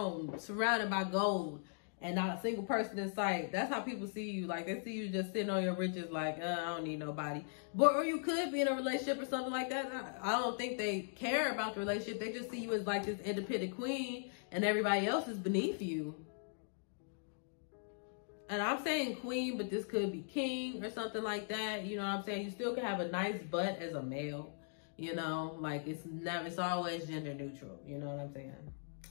surrounded by gold and not a single person in sight. That's how people see you. Like, they see you just sitting on your riches like, I don't need nobody. But, or you could be in a relationship or something like that. I don't think they care about the relationship. They just see you as like this independent queen and everybody else is beneath you. And I'm saying queen, but this could be king or something like that. You know what I'm saying? You still can have a nice butt as a male. You know, like it's always gender neutral. You know what I'm saying?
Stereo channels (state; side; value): silent; right; digital silence